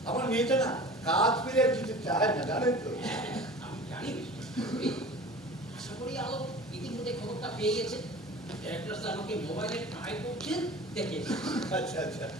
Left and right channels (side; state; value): both; normal; correlation 0.40